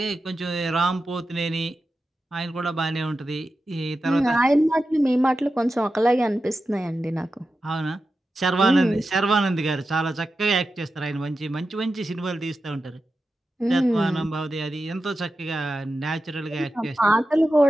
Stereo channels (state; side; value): normal; both; correlation 0.91